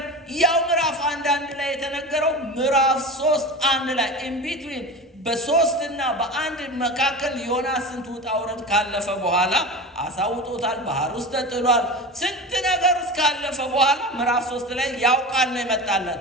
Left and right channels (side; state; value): both; normal; correlation 0.29